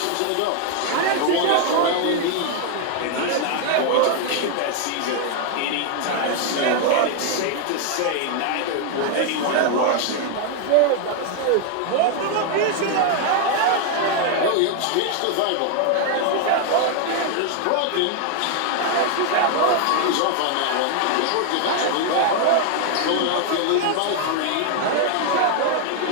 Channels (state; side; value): different; both; correlation 0.00